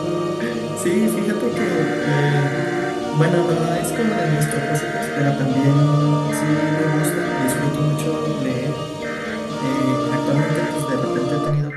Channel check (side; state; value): both; identical; correlation 1.00